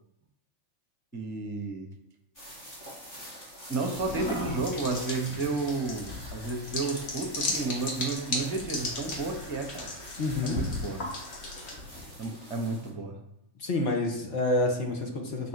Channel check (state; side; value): late; right; 3.4 ms